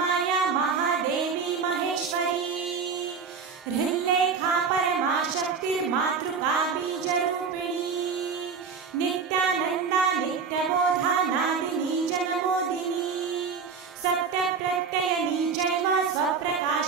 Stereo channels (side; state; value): left; quieter; 5.6 dB